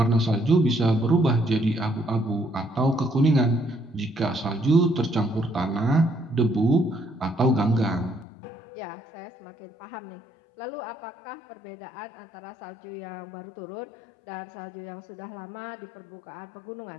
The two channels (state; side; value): drops out; right; at 8.2 s